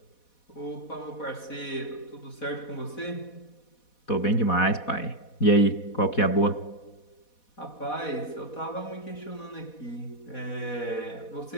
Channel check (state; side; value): late; right; 4.1 ms